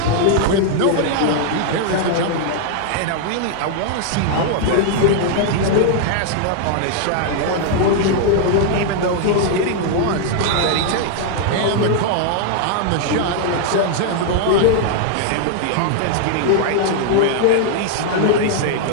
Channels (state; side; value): different; both; correlation 0.00